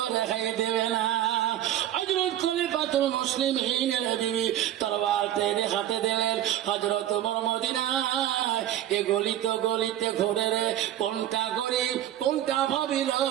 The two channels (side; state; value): left; quieter; 12.1 dB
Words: খাই দেবে না। হযরত খলিফাতুল মুসলিমিন বিবি তরবাল টেনে হাতে দিলেন। হযরত ওমর মদিনায় এ গলিতে গলিতে ঘুরে রে কোনটা গরিব কোনটা ভাবি